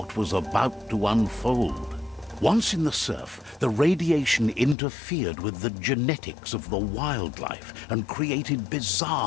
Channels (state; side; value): drops out; right; at 4.8 s